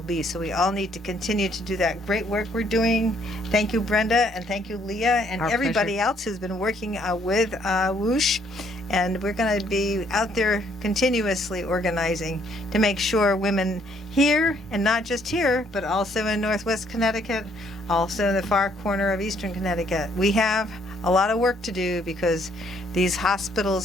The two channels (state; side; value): normal; both; correlation 0.67